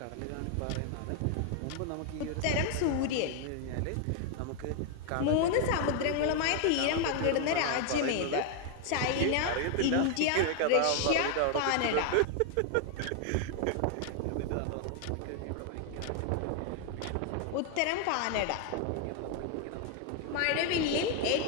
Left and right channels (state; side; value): different; both; correlation 0.00